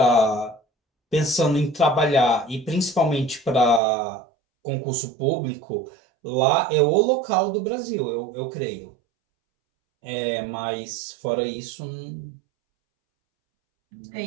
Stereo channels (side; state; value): left; drops out; at 3.8 s